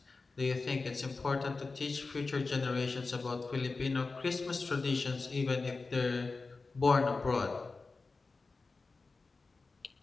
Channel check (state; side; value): quieter; right; 3.9 dB